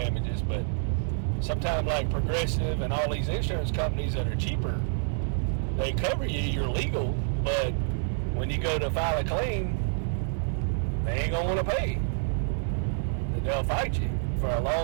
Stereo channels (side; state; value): left; silent; 59 dB below the other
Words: but sometimes like Progressive and all these insurance companies that are cheaper, they cover you, you're legal, but when you go to file a claim, they ain't gonna want to pay. They'll fight you for a